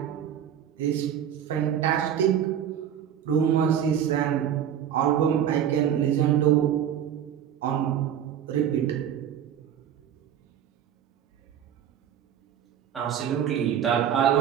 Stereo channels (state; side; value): quieter; left; 9.5 dB